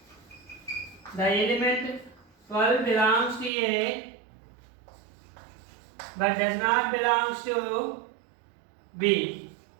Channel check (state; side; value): drops out; left; at 3.5 s